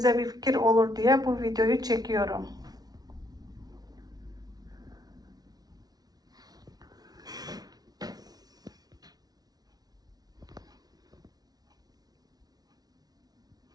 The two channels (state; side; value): late; left; 0.19 ms